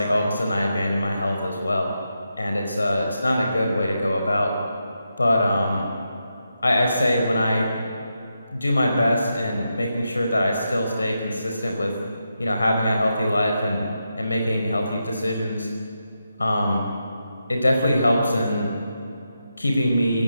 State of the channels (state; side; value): inverted; both; correlation -0.86